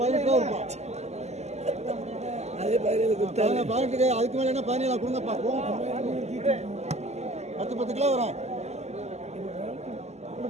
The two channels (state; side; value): late; left; 0.33 ms